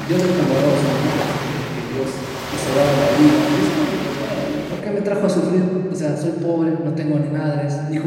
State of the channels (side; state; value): both; identical; correlation 1.00